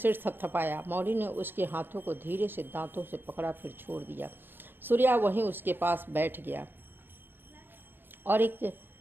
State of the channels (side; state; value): left; late; 0.098 ms